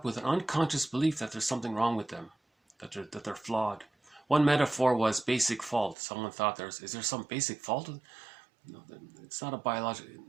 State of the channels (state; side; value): drops out; left; at 6.0 s